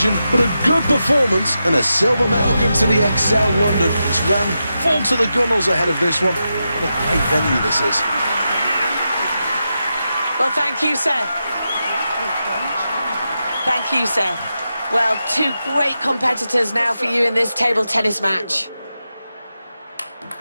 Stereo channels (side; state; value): both; inverted; correlation -0.88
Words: but a good performance and a silver medal. Welcome to the Excel London. It's ran full to the gunnels ahead of this one. What a great venue this is. Well, thank you, Seth. Thank you, Seth. Well, two great competitors now for you in this table tennis match.